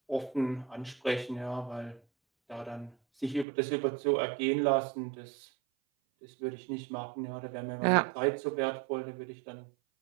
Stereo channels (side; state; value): left; drops out; at 3.5 s